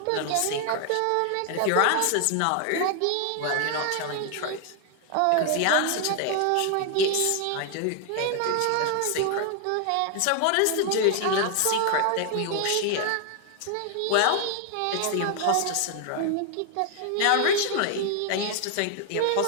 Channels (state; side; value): different; both; correlation 0.00